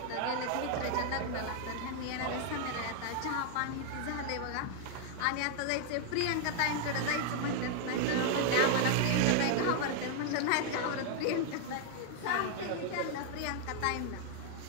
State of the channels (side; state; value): both; different; correlation 0.00